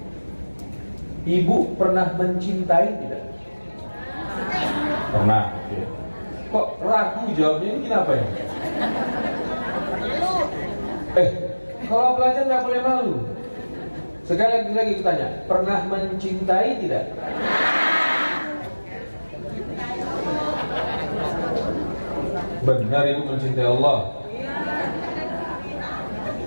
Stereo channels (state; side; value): inverted; both; correlation -1.00